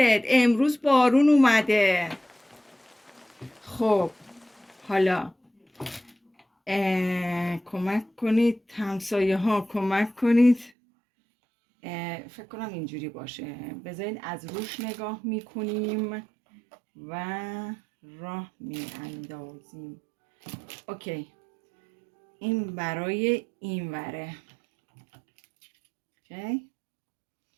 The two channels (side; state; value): left; drops out; at 10.7 s